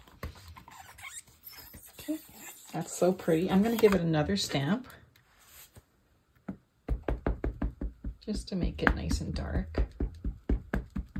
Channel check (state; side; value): identical; both; correlation 1.00